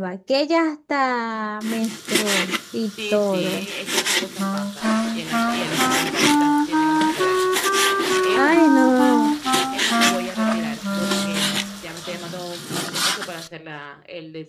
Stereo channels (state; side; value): identical; both; correlation 1.00